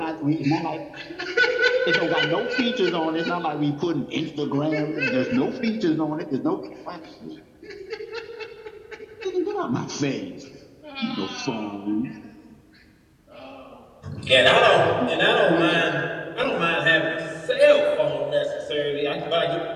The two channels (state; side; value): identical; both; correlation 1.00